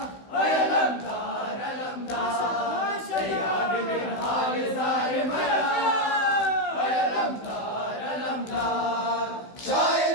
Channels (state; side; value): late; right; 16 ms